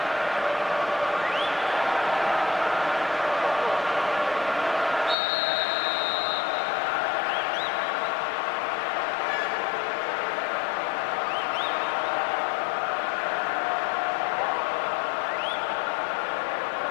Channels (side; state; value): right; drops out; at 5.2 s